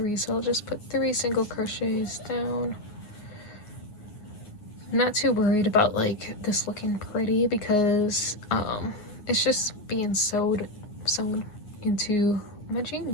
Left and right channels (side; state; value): right; late; 9.6 ms